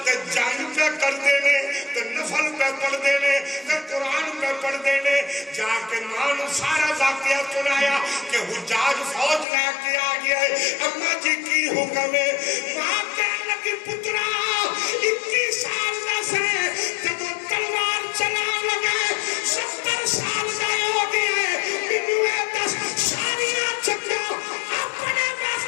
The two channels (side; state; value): right; drops out; at 9.5 s